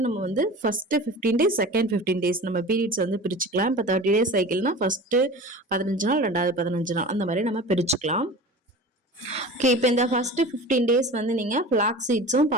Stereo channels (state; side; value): normal; both; correlation 0.36